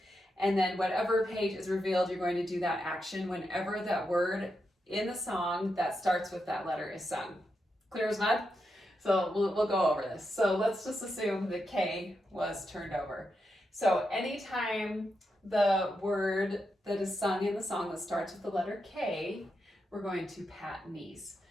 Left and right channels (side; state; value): both; normal; correlation 0.85